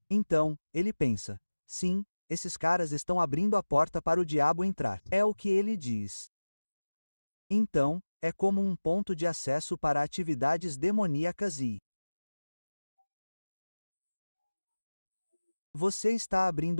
Então, ele pensa: sim, esses caras estão abrindo a porta para o diabo entrar. É o que ele diz. Então, é como um ponto de acesso para atividades demoníacas e você está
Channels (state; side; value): inverted; both; correlation -1.00